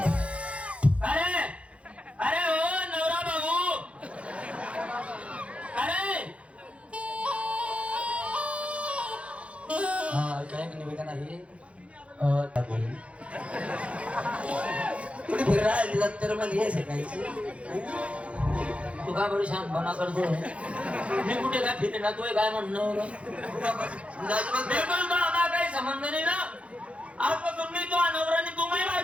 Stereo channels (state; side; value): late; left; 0.062 ms